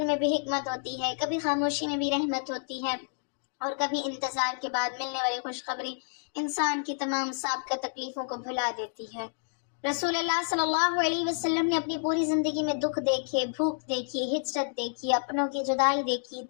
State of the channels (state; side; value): silent; right; digital silence